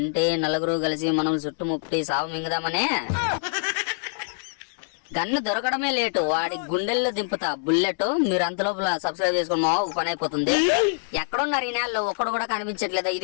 నలుగురు కలిసి మనం చుట్టుముట్టి సాగు మింగదామనే. గన్ను దొరకడమే లేటు, వాడి గుండెల్లో దింపుతా బుల్లెట్. మీరు అంతలోపల సబ్స్క్రైబ్ చేసుకుని మామ, పని అయిపోతుంది. ఎక్కడున్నారు ఈ నెలలో ఒక్కడు కూడా కనిపించట్లేదా?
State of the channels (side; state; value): right; silent; 61 dB below the other